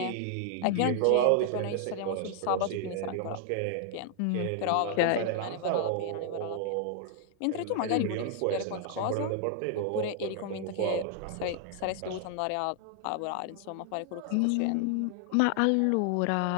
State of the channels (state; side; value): different; both; correlation 0.00